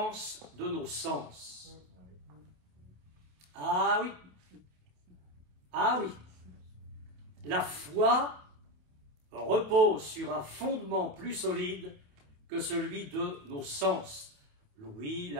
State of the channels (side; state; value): left; late; 28 ms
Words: de nos sens. Ah oui, ah oui, la foi repose sur un fondement plus solide que celui de nos sens. L'ouïe,